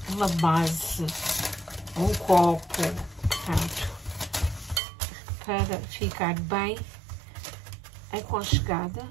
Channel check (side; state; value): left; drops out; at 4.8 s